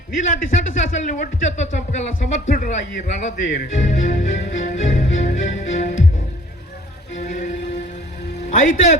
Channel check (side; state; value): both; normal; correlation 0.53